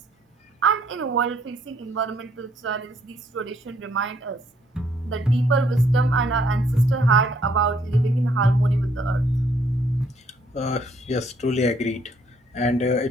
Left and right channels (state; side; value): normal; both; correlation 0.67